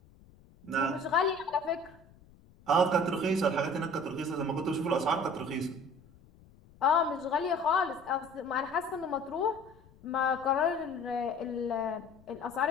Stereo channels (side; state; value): left; noise; rumble, 26 dB below the sound